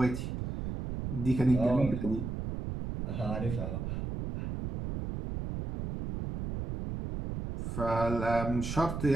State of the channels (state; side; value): noise; right; rumble, 5 dB below the sound